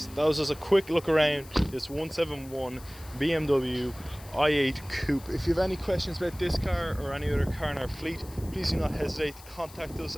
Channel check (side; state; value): left; noise; hiss, 20 dB below the sound